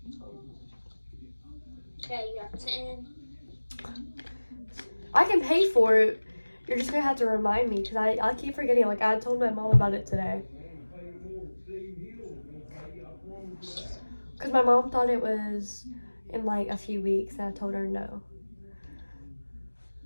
Okay, you have 10. I can pay for it. You're just gonna have to remind me because I keep forgetting. Like I told my mom about it today. Because my mom thought it was in like a few weeks and I told her no.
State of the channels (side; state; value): both; inverted; correlation -1.00